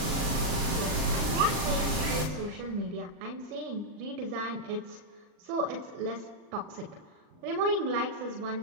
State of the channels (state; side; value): late; left; 39 ms